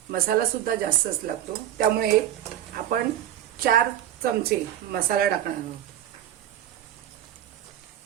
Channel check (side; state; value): left; quieter; 11.5 dB